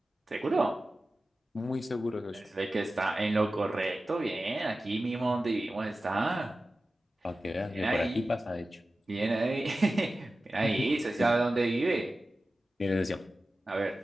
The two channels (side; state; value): both; normal; correlation 0.94